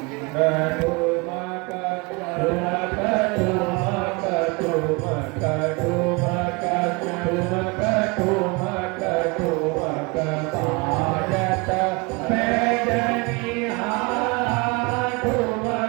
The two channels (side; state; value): left; quieter; 27.8 dB